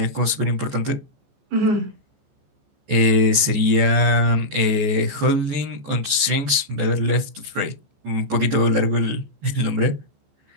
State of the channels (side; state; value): left; late; 14 ms